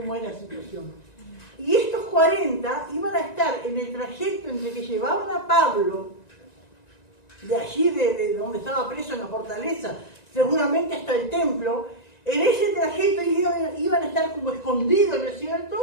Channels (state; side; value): late; right; 1.9 ms